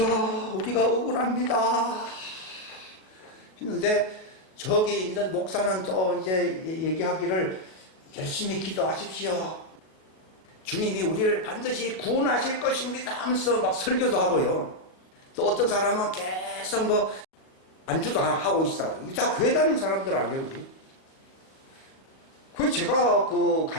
우리가 억울합니다 했는데 저기 있는 목사는 또 이제 얘기하기를 열심히 기도하십시오. 주님이 우리를 반드시 구원하실 것입니다 하면서 막 설교도 하고요. 또 어떤 사람은 계속 뭐 안주도 하고 있어. 이게 다 교회 다니는 사람들 아니에요. 그래서 제가 그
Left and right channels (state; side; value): late; right; 38 ms